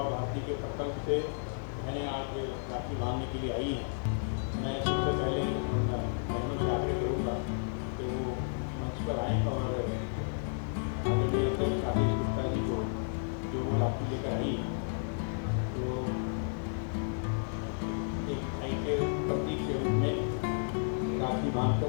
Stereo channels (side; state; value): right; silent; 56 dB below the other